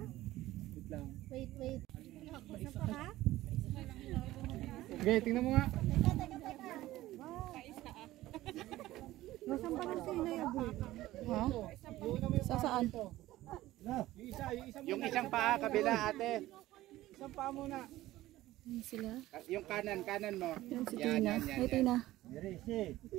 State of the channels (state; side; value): quieter; left; 16.1 dB